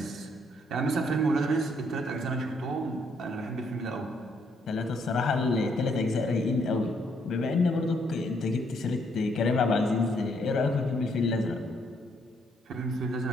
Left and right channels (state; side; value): normal; both; correlation 0.71